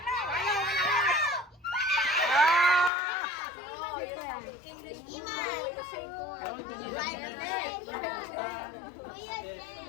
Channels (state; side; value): drops out; right; at 2.9 s